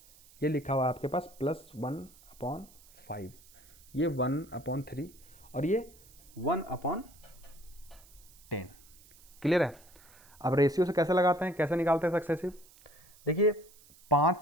ये लिखा हुआ है आपके पास +1/5, ये 1/3 और ये 1/10। क्लियर है? अब रेशियो से कैसे लगाते हैं, कैसे निकालते हैं सक्सेसिव? देखिए 5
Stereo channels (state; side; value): noise; right; hiss, 24 dB below the sound